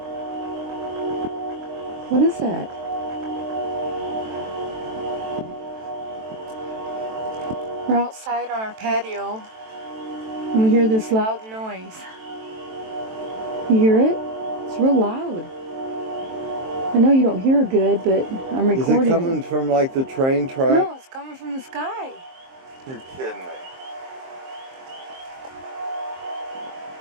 What is that? We're outside on our patio and we hear this loud noise. You hear it? It's real loud. I know you don't hear good, but I'm recording. Is it coming from like the train track? No, it's coming from the sky. You're kidding me.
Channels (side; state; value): left; late; 23 ms